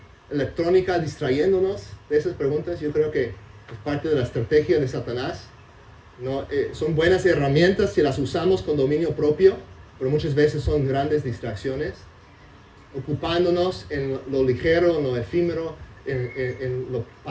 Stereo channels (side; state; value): both; identical; correlation 1.00